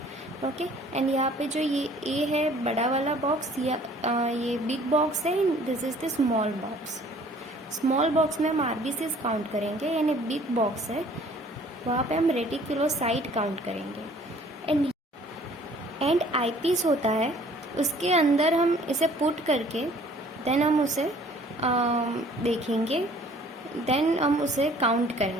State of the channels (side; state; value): both; normal; correlation 0.55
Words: Okay and यहाँ पे जो ये ए है बड़ा वाला बॉक्स या ये बिग बॉक्स है, this is the small box. Small box में हम आरबीसीज काउंट करेंगे, यानी बिग बॉक्स है वहाँ पे हम रेटिकुलोसाइट काउंट करेंगे. एंड आईपीस होता है, उसके अंदर हम इसे पुट करके देन हम उसे देखेंगे, देन हम उसे काउंट